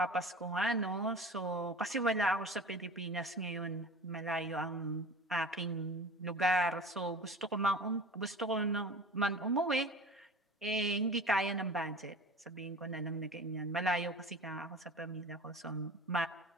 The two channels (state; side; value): normal; both; correlation 0.38